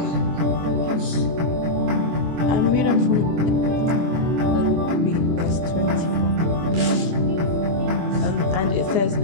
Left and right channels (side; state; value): left; late; 24 ms